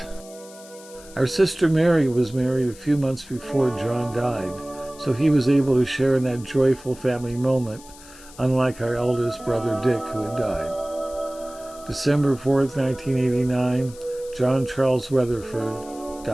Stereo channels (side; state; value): left; noise; hiss, 20 dB below the sound